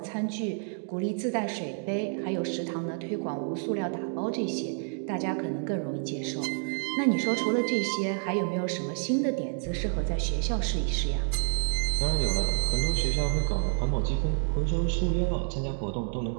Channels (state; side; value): silent; left; 57 dB below the other